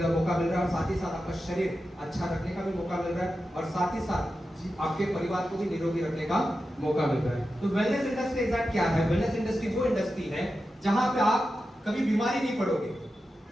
मिल रहा है, और साथ ही साथ आपका शरीर अच्छा रखने का भी मौका मिल रहा है, और साथ ही साथ आपके परिवार को भी निरोगी रखने का मौका मिल रहा है। तो वेलनेस इंडस्ट्री एग्जैक्ट क्या है? वेलनेस इंडस्ट्री वो इंडस्ट्री है जहाँ पे आप कभी बीमारी नहीं पड़ोगे,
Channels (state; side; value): normal; both; correlation 0.91